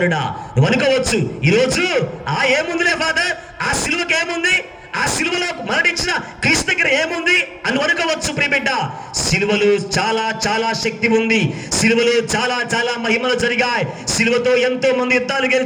నువ్వు అనుకోవచ్చు, ఈరోజు ఏముందిలే ఫాదర్, ఆ సిలువకి ఏముంది, ఆ సిలువలో మరణించిన క్రీస్తు దగ్గర ఏముంది అని అనుకోవచ్చు. ప్రియబిడ్డ, సిలువలో చాలా చాలా శక్తి ఉంది. సిలువలో చాలా చాలా మహిమలు జరిగాయి. సిలువతో ఎంతో మంది యుద్ధాలు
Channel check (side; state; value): both; identical; correlation 1.00